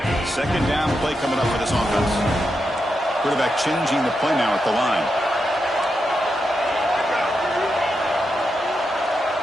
Second down play coming up for this offense. Quarterback changing the play now at the line.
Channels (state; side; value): normal; both; correlation 0.86